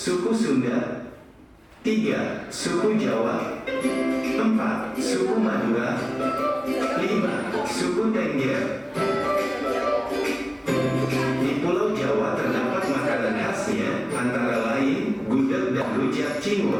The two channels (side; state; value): both; identical; correlation 1.00